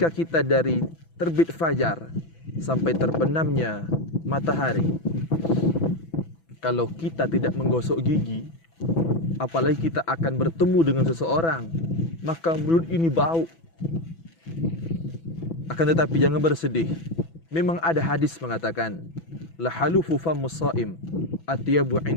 kita dari terbit fajar sampai terbenamnya matahari, kalau kita tidak menggosok gigi, apalagi kita akan bertemu dengan seseorang, maka mulut ini bau. Akan tetapi jangan bersedih. Memang ada hadis mengatakan, la halufu famus shaim atyabu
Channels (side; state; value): right; late; 6.0 ms